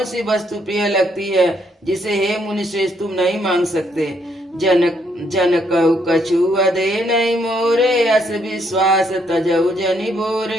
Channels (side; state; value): both; normal; correlation 0.72